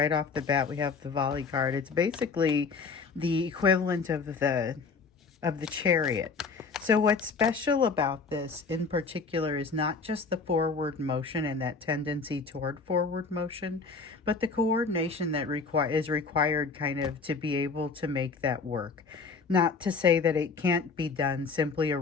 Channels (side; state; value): right; quieter; 4.6 dB